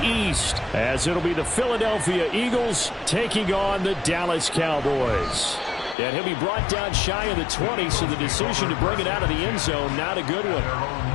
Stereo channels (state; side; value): drops out; right; at 6.0 s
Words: East, as it'll be the Philadelphia Eagles taking on the Dallas Cowboys. And he'll be brought down shy of the 20, so the decision to bring it out of the end zone, not a good one.